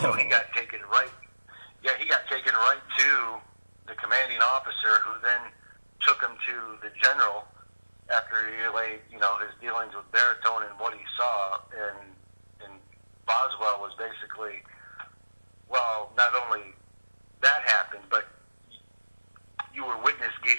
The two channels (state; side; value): inverted; both; correlation -1.00